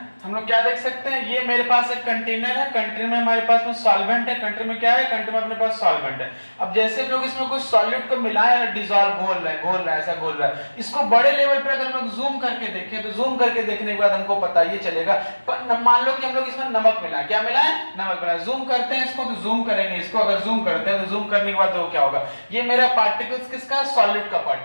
हम लोग क्या देख सकते हैं, ये मेरे पास एक कंटेनर है, कंटेनर में हमारे पास में सॉल्वेंट है, कंटेनर में क्या है, कंटेनर में अपने पास सॉल्वेंट है। अब जैसे हम लोग इसमें कुछ सॉल्यूट को मिलाए और डिसॉल्व घोल रहे हैं, ऐसा घोल रहा है। इसको बड़े लेवल पर अगर हम लोग जूम करके देखें तो जूम करके देखने के बाद हमको पता ये चलेगा। पर मान लो कि हम लोग इसमें नमक मिलाए, क्या मिलाए, नमक मिलाए। जूम करते हैं इसको, तो जूम करेंगे इसको, अगर जूम करते हैं तो जूम करने के बाद तो क्या होगा, ये मेरा पार्टिकल्स किसका, सॉल्यूट का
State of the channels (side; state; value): both; inverted; correlation -1.00